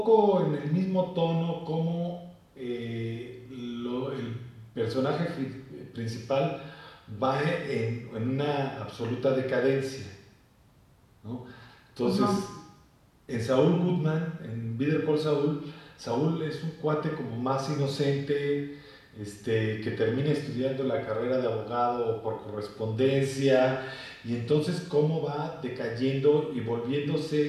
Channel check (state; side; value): identical; both; correlation 1.00